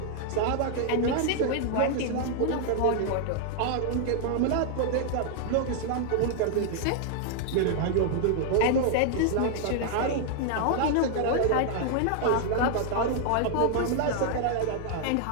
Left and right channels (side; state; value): both; different; correlation 0.00